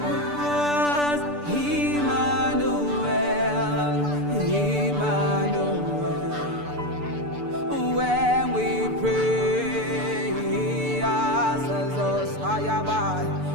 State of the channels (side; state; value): left; late; 6.8 ms